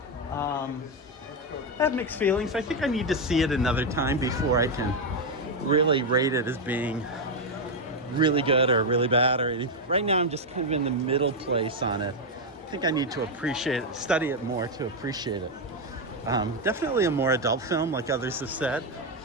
I have mixed feelings. I think I need to see it another time before I can really rate it as being really good or really bad or anything. Right now I'm just kind of in the middle place on it. I think I need to appreciate it, study it more to appreciate it. Definitely a more adult film, like others have said,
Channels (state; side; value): normal; both; correlation 0.04